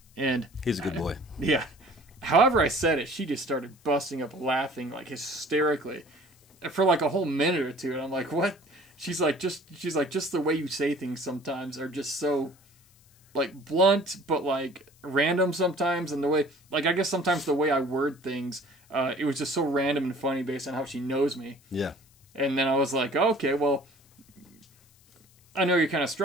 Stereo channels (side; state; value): left; noise; hiss, 30 dB below the sound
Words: And he's a good boy. Yeah. However I said it, she just started busting up laughing, like, hysterically for like a whole minute or two. And I'm like, what? She's like, just the way you say things sometimes are just so, like, blunt, but, like, random sometimes. And the way, like, I guess sometimes the way I word things, it was just so random and funny based on how she knows me. Yeah. And then I was like, okay, well, I know you're kind of